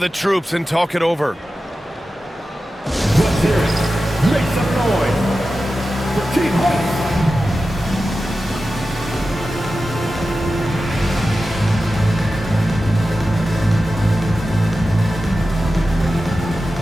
troops and talk it over. Let's hear it. Make some noise for Team Hawks.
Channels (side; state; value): both; normal; correlation 0.93